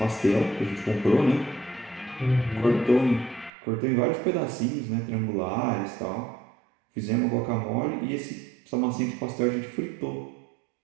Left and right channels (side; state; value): left; drops out; at 3.5 s